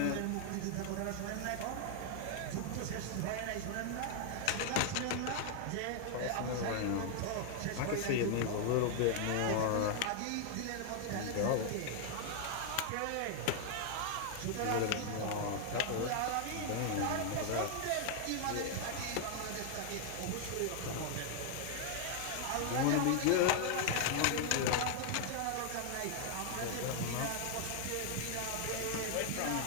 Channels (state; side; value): different; both; correlation 0.00